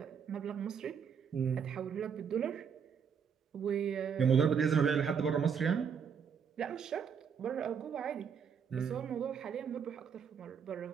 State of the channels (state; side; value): quieter; left; 6.9 dB